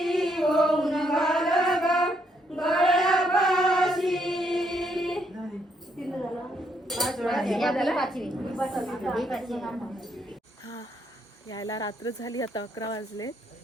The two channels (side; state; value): both; normal; correlation 0.74